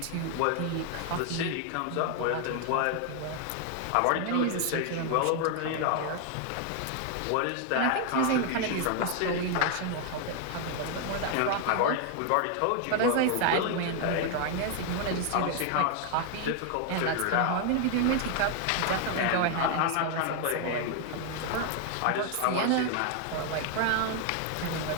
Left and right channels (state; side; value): different; both; correlation 0.00